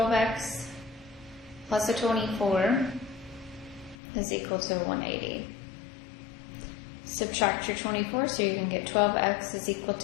plus a 24 is equal to 180. Subtract your 24, so you can get 12x is equal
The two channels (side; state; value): right; drops out; at 4.0 s